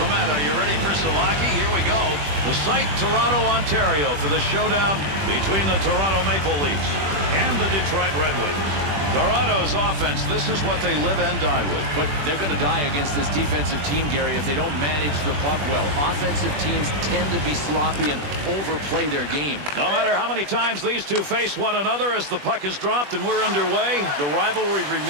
Are you ready for some hockey? Here we go. The site, Toronto, Ontario, for the showdown between the Toronto Maple Leafs and the Detroit Red Wings. Toronto's offense, this is what they live and die with. But they're going to die against this defensive team, Gary, if they don't manage the puck well. Offensive teams tend to be sloppy and overplay their game. No matter how many times these two face one another as the puck is dropped and we're underway, the rivalry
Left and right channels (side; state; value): left; late; 21 ms